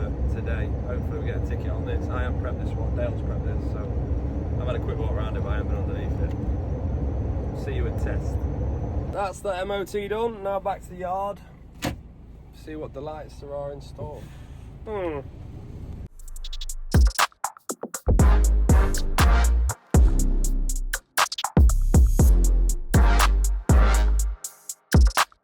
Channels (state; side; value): identical; both; correlation 1.00